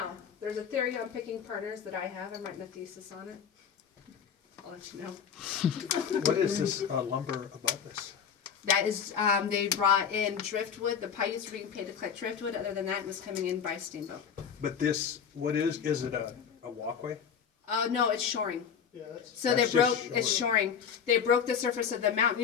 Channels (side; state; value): right; quieter; 7.4 dB